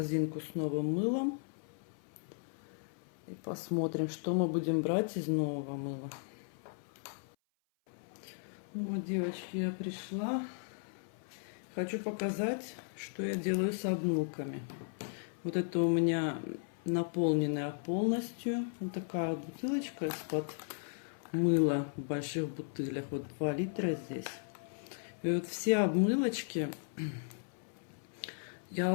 с новым мылом. И посмотрим, что мы будем брать из нового мыла. Ну вот, девочки, я пришла. Хочу показать, что я делаю с обмылками. Вот это у меня наполненная полностью. Вот такая вот бутылочка из-под мыла в больших бутылях. Вот 2 литра здесь. И вот все обмылочки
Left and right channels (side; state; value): right; silent; 54 dB below the other